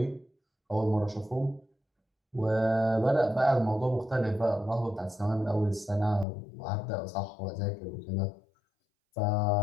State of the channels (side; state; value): right; drops out; at 6.2 s